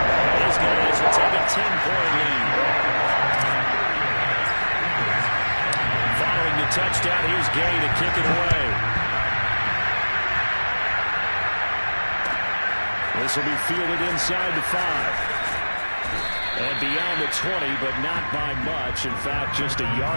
These guys will take a 10-point lead. Following the touchdown, here's Gay to kick it away. This will be fielded inside the 5. And beyond the 20, but not by much. In fact, just a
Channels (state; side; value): inverted; both; correlation -1.00